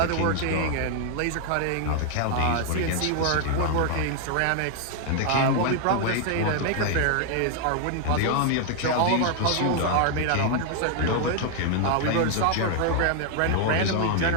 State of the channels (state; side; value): different; both; correlation 0.00